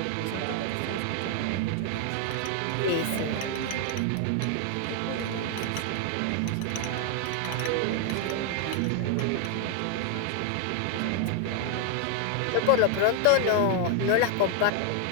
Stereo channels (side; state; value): both; different; correlation 0.00